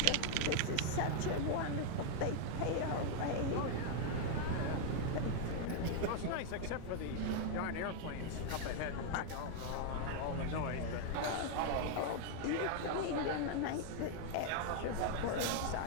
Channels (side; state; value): both; different; correlation 0.00